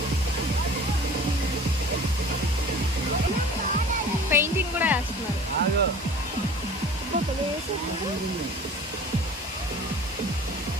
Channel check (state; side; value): normal; both; correlation 0.43